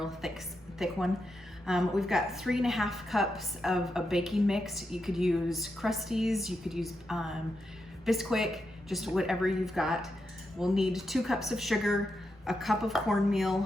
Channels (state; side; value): normal; both; correlation 0.85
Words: thick one. We've got 3.5 cups of a baking mix. You could use Krusteaz, you could use Bisquick, just whatever you've got. We'll need 2 cups of sugar, a cup of